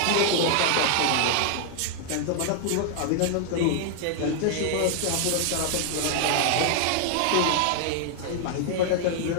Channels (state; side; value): different; both; correlation 0.00